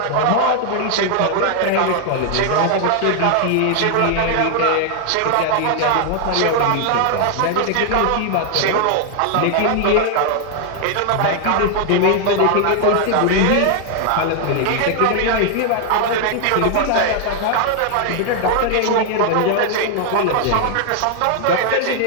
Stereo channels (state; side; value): different; both; correlation 0.00